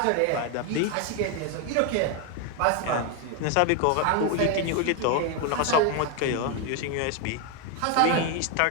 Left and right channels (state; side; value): different; both; correlation 0.01